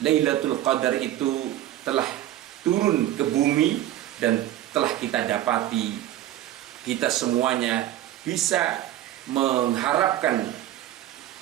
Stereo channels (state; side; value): quieter; left; 13.3 dB